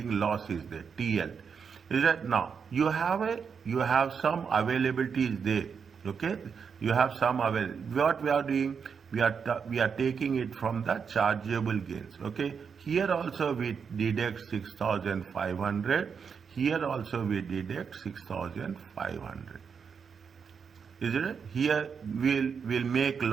loss is there, TL. Is that now you have some availability is there. Okay, you have some available. What we are doing? We are taking it from the chargeable gains. Okay, here also we deduct 6,500. Here also we deduct 6,500. Is it? Here we'll make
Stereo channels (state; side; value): quieter; left; 6.3 dB